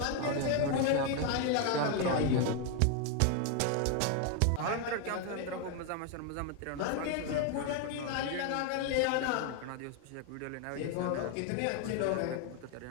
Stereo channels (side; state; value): both; different; correlation 0.01